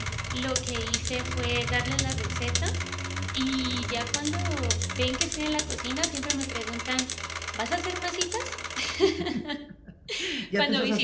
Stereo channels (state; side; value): identical; both; correlation 1.00